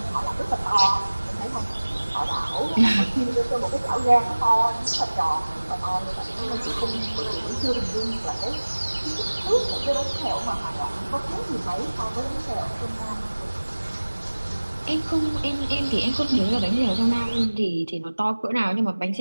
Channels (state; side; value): inverted; both; correlation -1.00